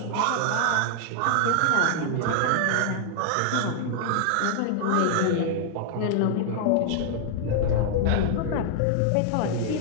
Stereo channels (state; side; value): different; both; correlation 0.00